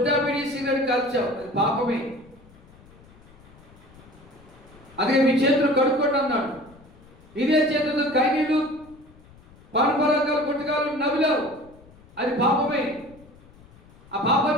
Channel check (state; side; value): noise; left; rumble, 25 dB below the sound